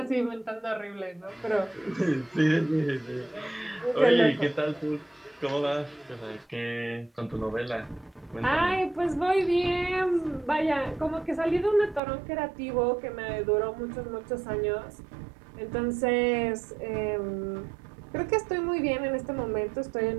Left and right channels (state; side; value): drops out; left; at 12.0 s